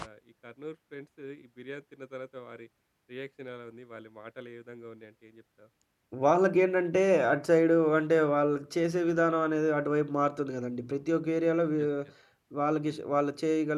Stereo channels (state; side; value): identical; both; correlation 1.00